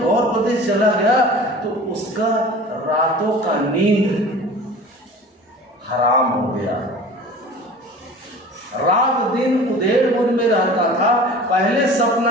गौर प्रदेश चला गया तो उसका रातों का नींद हराम हो गया, रात दिन उधेड़-बुन में रहता था। पहले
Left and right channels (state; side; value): normal; both; correlation 0.40